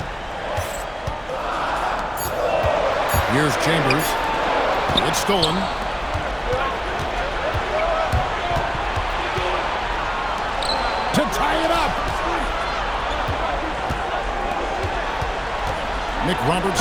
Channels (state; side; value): identical; both; correlation 1.00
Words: Here's Chambers. It's stolen. To tie it up. Nick Roberts